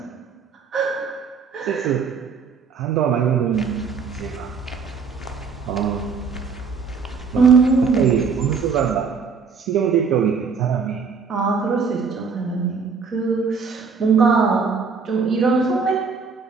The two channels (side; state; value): left; quieter; 5.4 dB